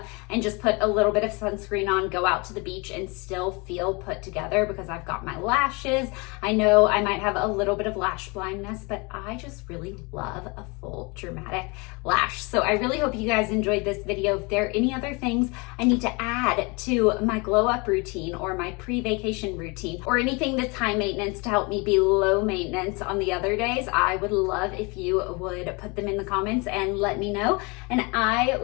and just put a little bit of sunscreen on, go out to the beach, and still feel put together because I've got my lashes. I know I might have a little bit of lash blindness, but I just really love a full dramatic lash. So I really hope you guys enjoyed this video. If there are any other things I need to add to my glow up routine or my pre-vacation routine, or anything that's high maintenance to help me be low maintenance on the other days, I would love if you would put them in the comments and let me know. And I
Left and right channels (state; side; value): quieter; right; 28.8 dB